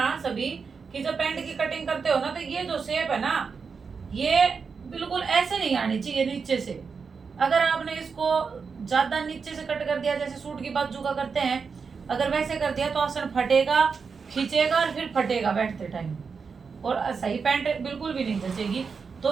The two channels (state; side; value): quieter; left; 5.4 dB